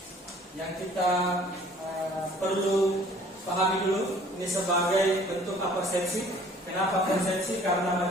yang kita perlu pahami dulu, ini sebagai bentuk absensi. Kenapa absensi? Karena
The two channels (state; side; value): normal; both; correlation 0.54